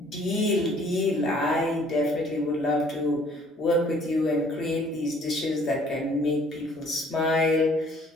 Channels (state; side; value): normal; both; correlation 0.58